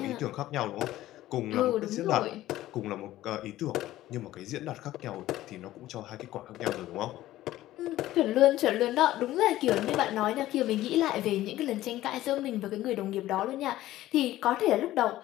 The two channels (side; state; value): right; quieter; 15.0 dB